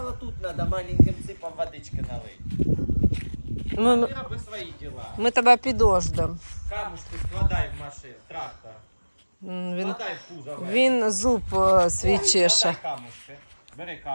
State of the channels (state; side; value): inverted; both; correlation -1.00